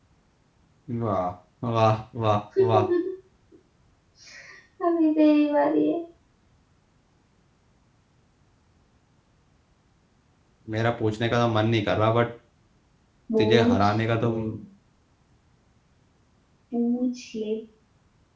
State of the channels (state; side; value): identical; both; correlation 1.00